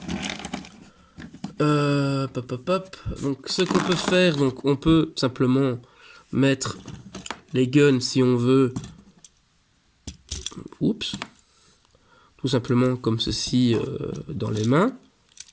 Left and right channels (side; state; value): both; identical; correlation 1.00